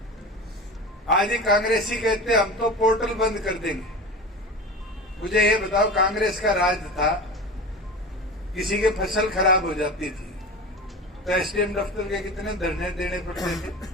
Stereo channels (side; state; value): both; normal; correlation 0.30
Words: आज ही कांग्रेसी कहते हम तो पोर्टल बंद कर देंगे। मुझे ये बताओ, कांग्रेस का राज था, किसी के फसल खराब हो जाती थी तो एसडीएम दफ्तर के कितने धरने देने पड़ते थे।